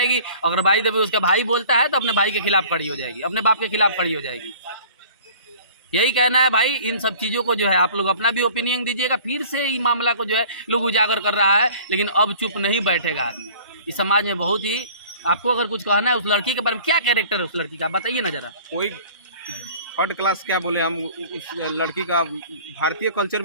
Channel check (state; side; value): inverted; both; correlation -0.47